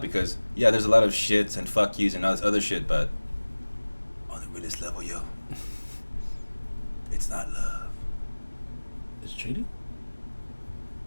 because yeah, there's a lot of shits and fuck yous and all this other shit, but on the realest level, yo, it's not love. It's cheating?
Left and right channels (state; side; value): inverted; both; correlation -1.00